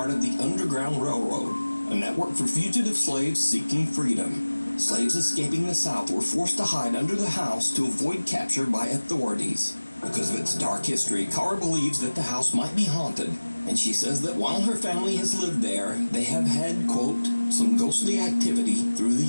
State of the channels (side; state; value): both; inverted; correlation -1.00